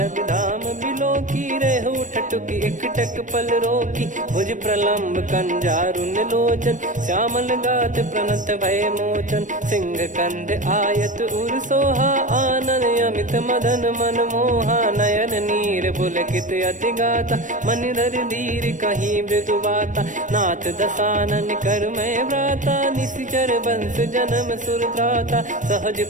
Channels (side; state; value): left; late; 0.37 ms